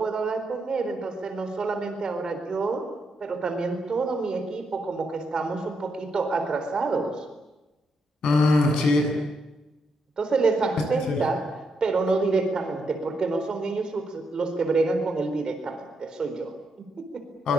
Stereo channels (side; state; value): both; normal; correlation 0.79